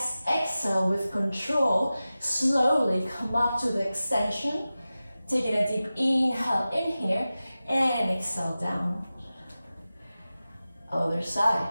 exhale with control, slowly come up to the extension, taking a deep inhale in here, and exhale down. Other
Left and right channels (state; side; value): inverted; both; correlation -0.95